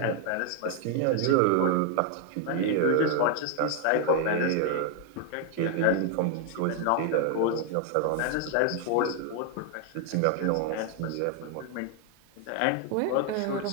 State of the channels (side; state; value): both; different; correlation 0.00